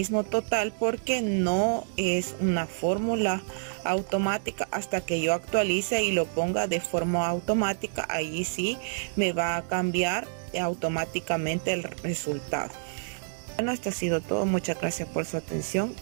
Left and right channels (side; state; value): left; silent; 59 dB below the other